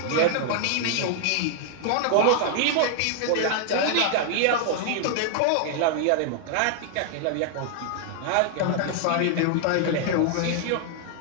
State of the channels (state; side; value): different; both; correlation 0.00